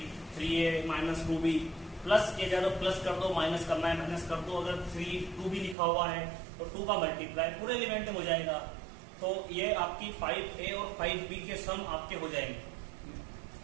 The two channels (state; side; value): drops out; left; at 5.8 s